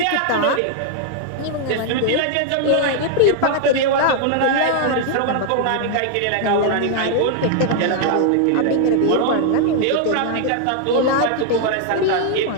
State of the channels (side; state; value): both; different; correlation 0.00